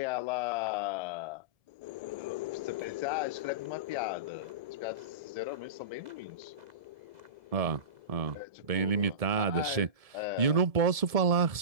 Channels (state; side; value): late; left; 1.7 ms